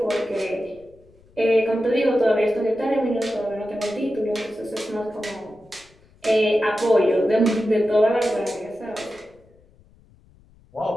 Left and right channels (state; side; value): noise; left; rumble, 29 dB below the sound